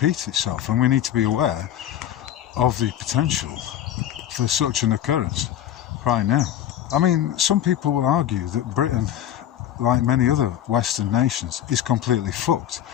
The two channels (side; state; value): right; quieter; 11.2 dB